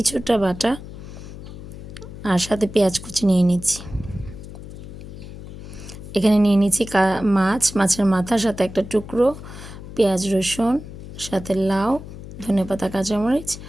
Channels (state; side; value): noise; left; hum, 13 dB below the sound